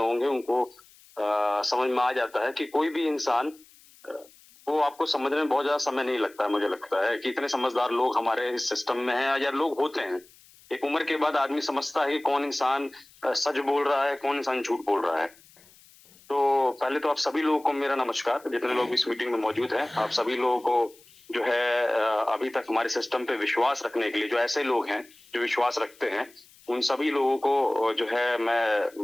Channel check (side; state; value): left; noise; hiss, 26 dB below the sound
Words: उनको समझ में आ जाता है कि कोई भी इंसान को आपको समझने में बहुत ज्यादा समय नहीं लगता है। मुझे लगता है कि इतने समझदार लोग हमारे इस सिस्टम में हैं, या लोग होते हैं। एक उम्र के बाद आदमी समझता है कि कौन इंसान सच बोल रहा है, कौन इंसान झूठ बोल रहा है। तो पहले तो आप सभी लोगों को मेरा नमस्कार, जितने लोग इस मीटिंग में मौजूद हैं। आप सभी लोगों को जो है अभी तक हमारे सिस्टम पे विश्वास रखने के लिए, जो ऐसे लोग हैं जो विश्वास रखते हैं, उन सभी लोगों को जो है